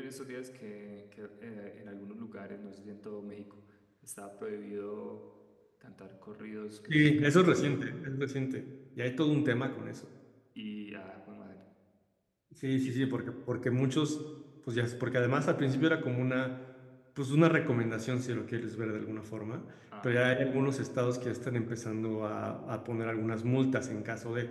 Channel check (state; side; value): identical; both; correlation 1.00